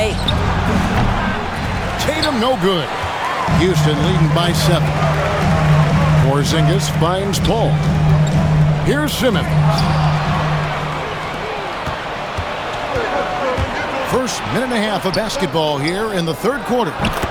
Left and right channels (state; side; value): identical; both; correlation 1.00